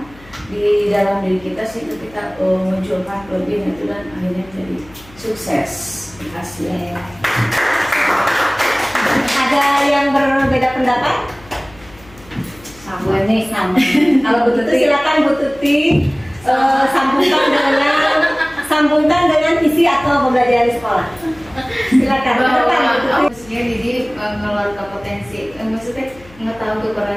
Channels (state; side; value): noise; left; hum, 23 dB below the sound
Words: di dalam diri kita, sehingga kita munculkan kelebihan itu dan akhirnya jadi sukses. Hasilnya. Ada yang berbeda pendapat? Sama nih, sama. Kalau Bu Tuti, silakan Bu Tuti sambungkan dengan visi atau pembelajaran di sekolah. Silakan. Maksudnya jadi mengeluarkan potensi, maksudnya mengetahui